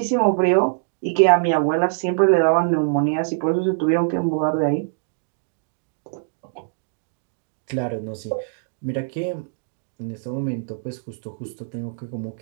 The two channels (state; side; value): silent; left; digital silence